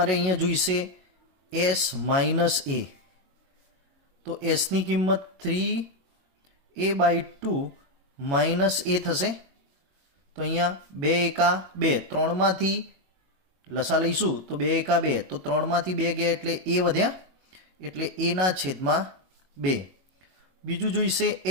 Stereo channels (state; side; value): late; left; 22 ms